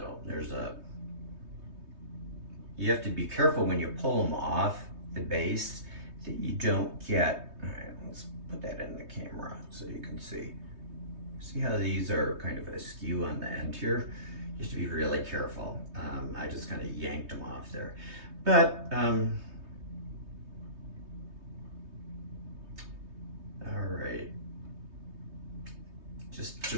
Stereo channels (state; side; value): late; left; 3.2 ms